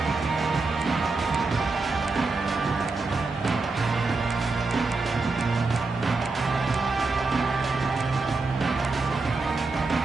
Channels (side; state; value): left; quieter; 3.8 dB